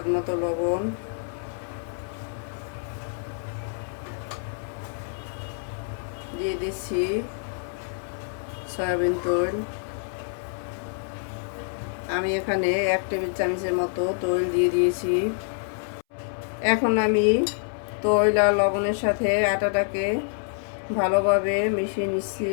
মতো লবণ, দিয়ে দিচ্ছি সয়াবিন তেল। আমি এখানে 1 টেবিল চামচের মতো তেল দিয়ে দিয়েছি। এখন আমি তেল আর লবণের সাথে আটাটাকে ভালোভাবে মিশিয়ে নিচ্ছি।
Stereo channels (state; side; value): silent; right; 60 dB below the other